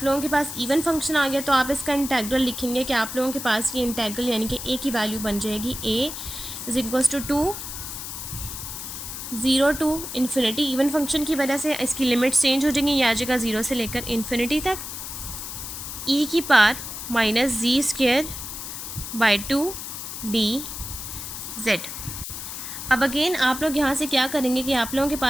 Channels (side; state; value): left; noise; hiss, 8 dB below the sound